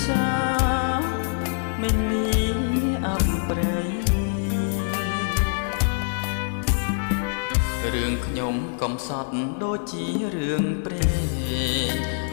សាមិនមានអប្រ័យរឿងខ្ញុំកំសត់ដូចជារឿងព្រេង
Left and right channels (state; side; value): silent; right; digital silence